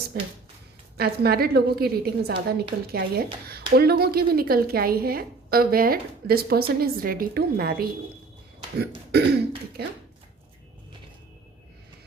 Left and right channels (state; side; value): quieter; left; 4.0 dB